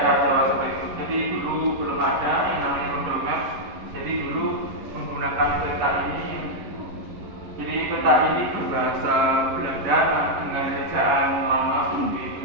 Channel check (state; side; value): late; left; 11 ms